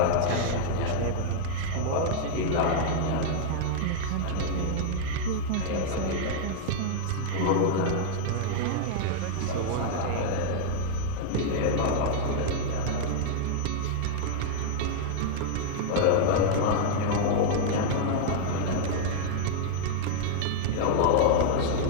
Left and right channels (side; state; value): both; different; correlation -0.01